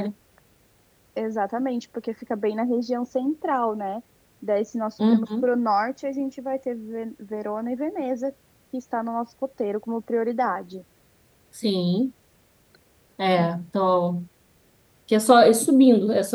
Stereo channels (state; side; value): identical; both; correlation 1.00